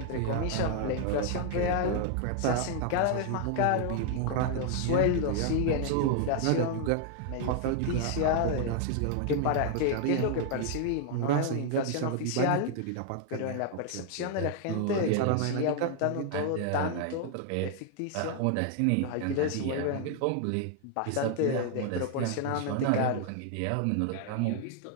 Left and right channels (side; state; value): both; different; correlation 0.00